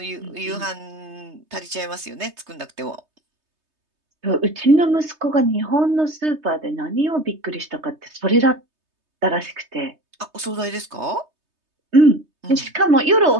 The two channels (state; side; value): late; left; 3.2 ms